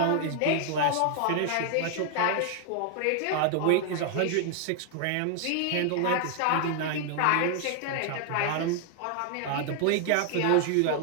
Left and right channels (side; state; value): both; different; correlation 0.00